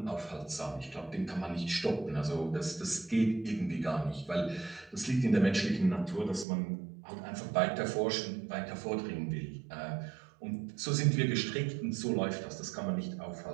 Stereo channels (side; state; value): left; drops out; at 6.5 s